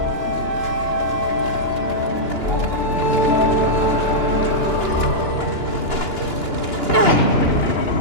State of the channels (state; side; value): late; right; 2.9 ms